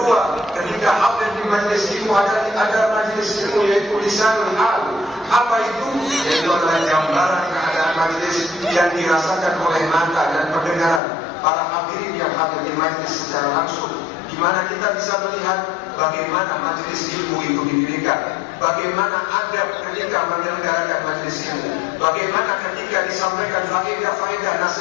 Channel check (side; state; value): right; drops out; at 11.0 s